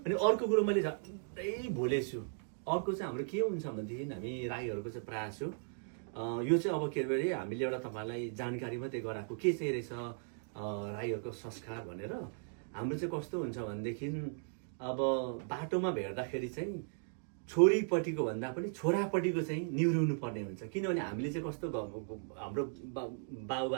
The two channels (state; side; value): silent; left; digital silence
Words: अर्को कुरो मैले झट्टै भुलेछु, अर्को चाहिँ हाम्रो के हुन्छ भनेदेखि हामी राईहरूको चाहिँ प्रयास हो यो चाहिँ अब के अरे हामीले एउटा तपाईँलाई जानकारी मात्रै गराएको के चाहिँ रहेछ राईहरूको संस्कार भनेर। हाम्रो चाहिँ कस्तो हुन्छ भनेदेखि अब बाटोमा भेट्दाखेरि चाहिँ छोरीपट्टिको भन्दा पनि छोरापट्टिको चाहिँ निहुरिनु पर्ने हुन्छ। किनभने हामीले चाहिँ कस्तो हाम्रो